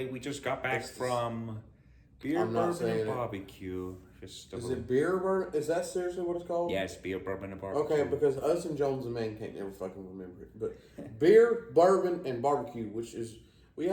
we just got back estes? from Beer, I'm not Bourbon, saying and it. Barbecue Festival. Is it beer bourbon? Is that seriously what it's called? Yes, Beer, Bourbon, and Barbecue. Okay, because us and Jones and Man can't never fucking remember it. But beer, bourbon, and barbecue, which is, we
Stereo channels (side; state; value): both; identical; correlation 1.00